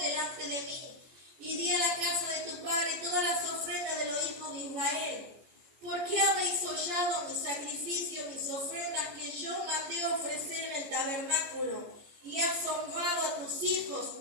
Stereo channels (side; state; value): left; late; 14 ms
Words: de mí. Y di a la casa de tu padre todas las ofrendas de los hijos de Israel. ¿Por qué habéis hollado mi sacrificio, mis ofrendas que yo mandé ofrecer en el tabernáculo? Y has honrado a tus hijos